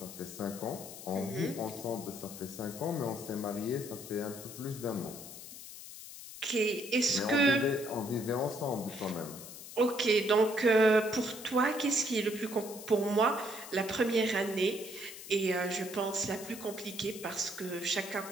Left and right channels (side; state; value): left; noise; hiss, 13 dB below the sound